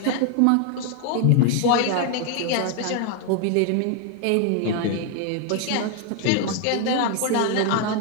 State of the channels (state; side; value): different; both; correlation 0.00